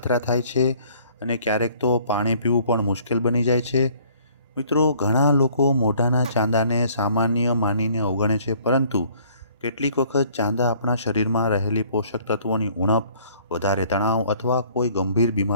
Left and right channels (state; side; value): inverted; both; correlation -0.58